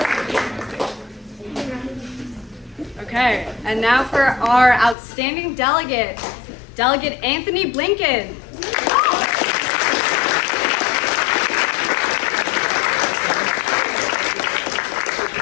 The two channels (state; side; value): drops out; right; at 5.0 s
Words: Okay, and now for our outstanding delegate, Delegate Anthony Blinken.